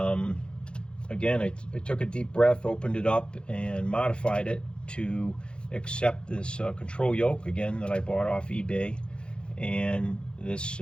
again, I took a deep breath, opened it up, and modified it to accept this control yoke, again, that I bought off eBay, and this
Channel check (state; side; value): late; right; 0.054 ms